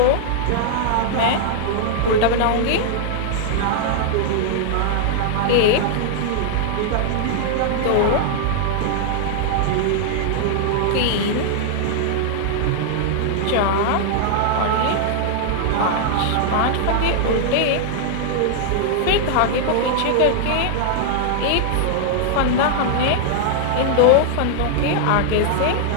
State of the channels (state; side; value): different; both; correlation -0.01